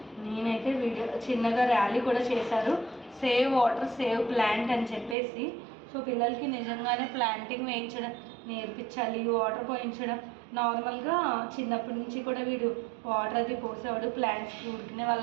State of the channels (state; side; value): drops out; left; at 5.2 s